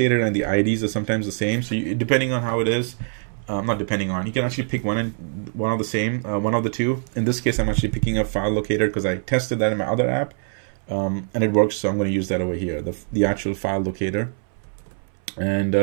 and the IDs are sometimes the same. So depending on how it is, not depending on, you can actually pick one of the same, one of the two. In this case, I'm actually picking up file locator because I tested that in my other app, and it works. So I'm going to use that over here, the actual file locator. And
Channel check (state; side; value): silent; left; 63 dB below the other